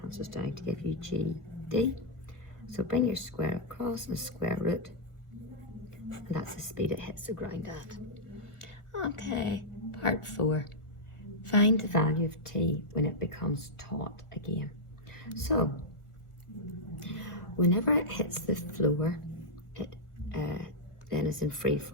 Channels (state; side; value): late; right; 1.6 ms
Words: cancels down to give you GD. So bring your square across and square root, and that's the speed it hits the ground at. Okay, part 4. Find the value of T when it becomes taut again. So, whenever it hits the floor, it then is in free